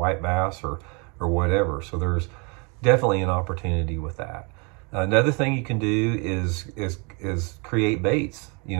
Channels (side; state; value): left; quieter; 32.6 dB